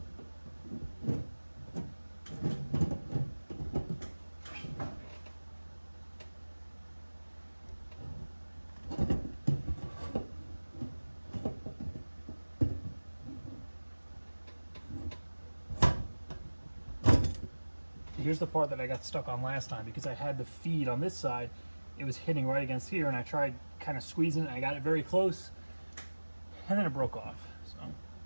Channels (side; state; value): both; inverted; correlation -1.00